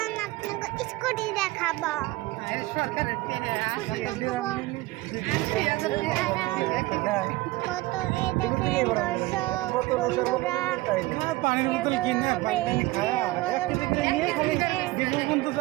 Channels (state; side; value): quieter; left; 19.9 dB